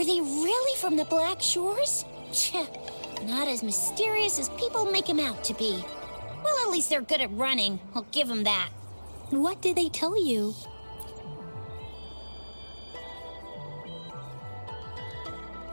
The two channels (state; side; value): inverted; both; correlation -1.00